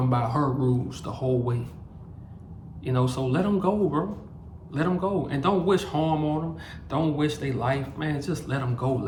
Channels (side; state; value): both; identical; correlation 1.00